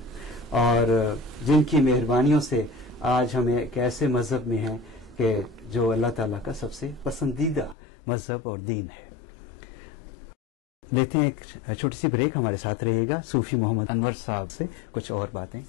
اور جن کی مہربانیوں سے آج ہم ایک ایسے مذہب میں ہیں کہ جو اللہ تعالیٰ کا سب سے پسندیدہ مذہب اور دین ہے۔ لیتے ہیں ایک چھوٹی سی بریک، ہمارے ساتھ رہیے گا، صوفی محمد انور صاحب سے کچھ اور باتیں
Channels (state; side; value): drops out; right; at 7.8 s